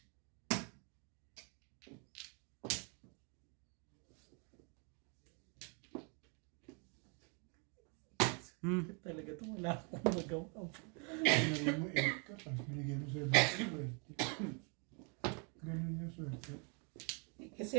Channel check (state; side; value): quieter; left; 36.1 dB